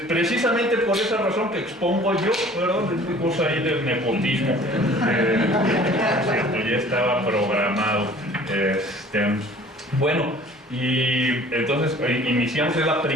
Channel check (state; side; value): normal; both; correlation 0.49